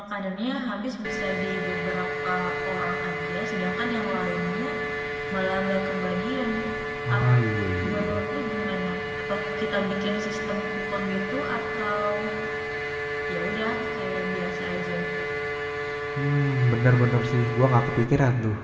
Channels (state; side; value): identical; both; correlation 1.00